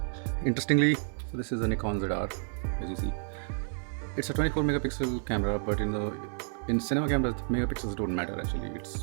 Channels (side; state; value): left; silent; digital silence